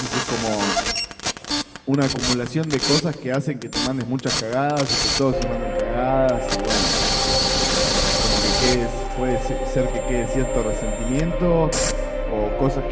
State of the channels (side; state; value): both; identical; correlation 1.00